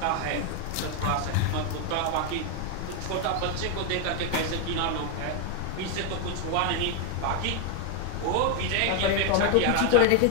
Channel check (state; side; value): different; both; correlation 0.01